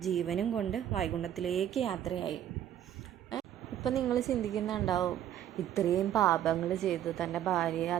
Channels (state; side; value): quieter; left; 11.1 dB